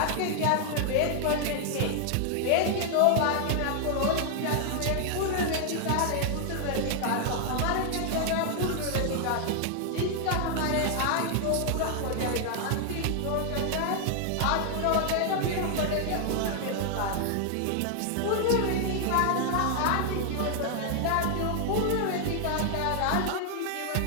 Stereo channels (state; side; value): different; both; correlation 0.00